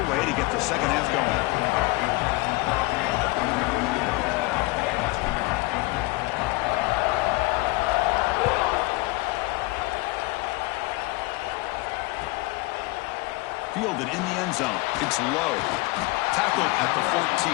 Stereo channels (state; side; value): quieter; right; 23.1 dB